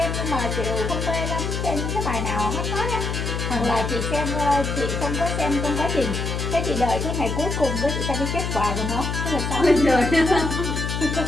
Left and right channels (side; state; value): left; noise; hum, 2 dB below the sound